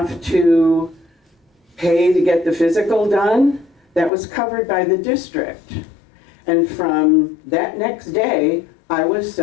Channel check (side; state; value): right; drops out; at 4.1 s